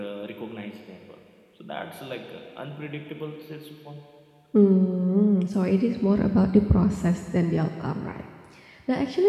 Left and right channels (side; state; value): both; identical; correlation 1.00